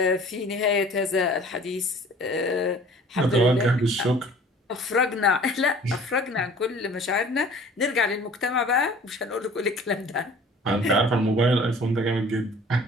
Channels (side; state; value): both; normal; correlation 0.48